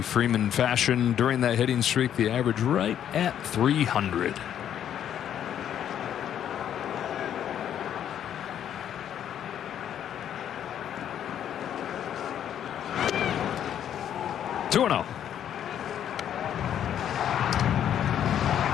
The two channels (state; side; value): quieter; right; 9.9 dB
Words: Freeman fashion during that hitting streak. The average right at 300. Two and 0.